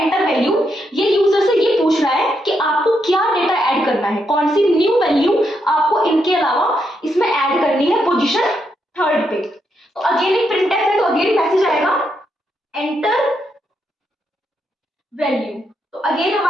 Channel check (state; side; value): normal; both; correlation 0.80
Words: वैल्यू, ये यूजर से ये पूछ रहा है कि आपको क्या डेटा ऐड करना है, कौन सी न्यू वैल्यू आपको इनके अलावा इसमें ऐड करनी है पोजीशन थर्ड पे। तो अगेन एक printf है, तो अगेन मैसेज आएगा एंटर वैल्यू। तो अगेन